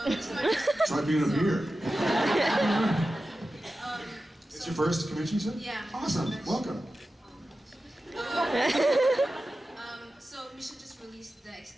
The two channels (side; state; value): both; normal; correlation 0.93